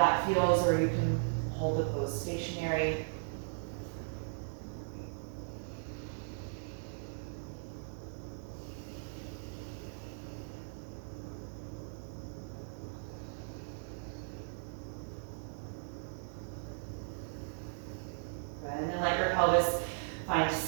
feels, or you can hold the pose stationary. find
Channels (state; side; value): silent; left; digital silence